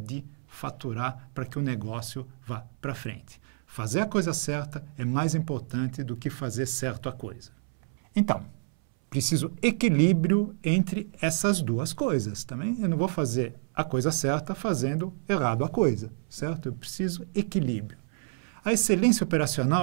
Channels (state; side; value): silent; left; 59 dB below the other